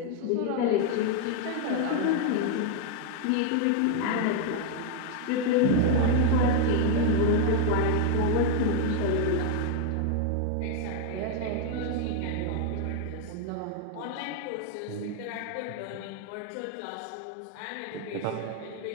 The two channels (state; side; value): different; both; correlation 0.01